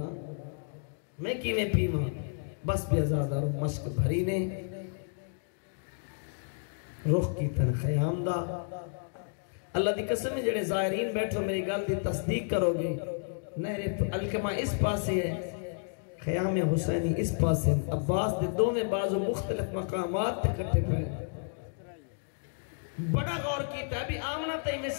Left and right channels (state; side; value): silent; right; digital silence